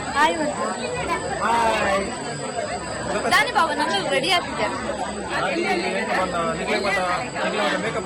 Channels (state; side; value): identical; both; correlation 1.00